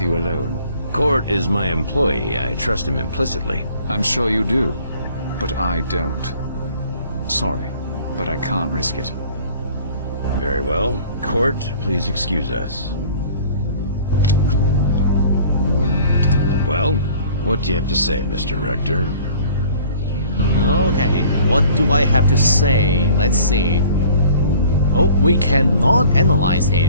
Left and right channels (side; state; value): both; inverted; correlation -0.51